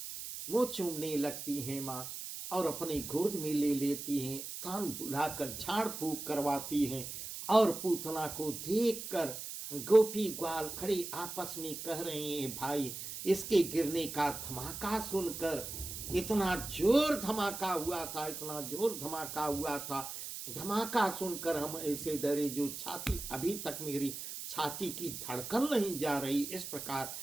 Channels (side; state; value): right; noise; hiss, 8 dB below the sound